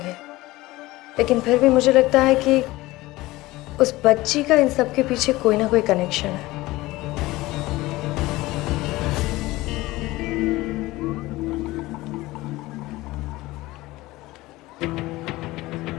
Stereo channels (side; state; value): right; quieter; 19.1 dB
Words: लेकिन फिर भी मुझे लगता है कि उस बच्ची का इन सब के पीछे कोई ना कोई कनेक्शन है।